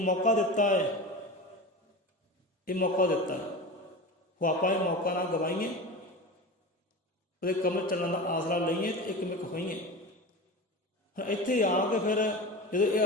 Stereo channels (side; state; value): both; normal; correlation 0.29